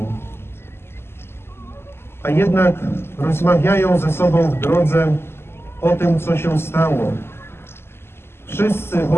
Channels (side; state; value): right; late; 0.12 ms